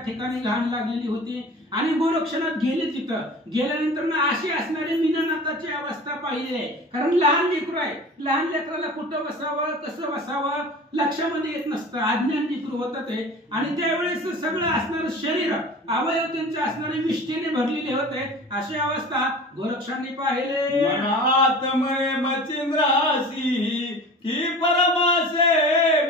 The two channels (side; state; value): both; normal; correlation 0.39